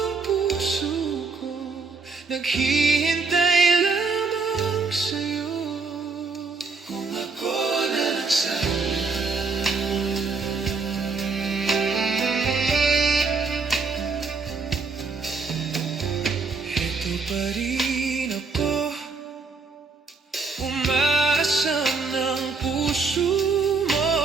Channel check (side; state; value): left; quieter; 4.5 dB